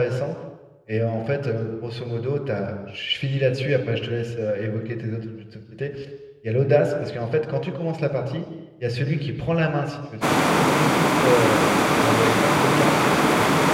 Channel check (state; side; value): identical; both; correlation 1.00